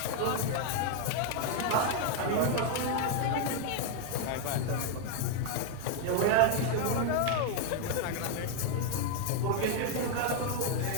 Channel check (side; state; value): both; different; correlation 0.00